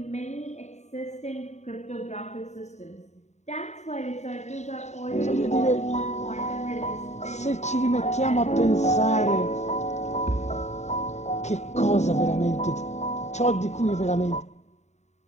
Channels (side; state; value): right; late; 0.33 ms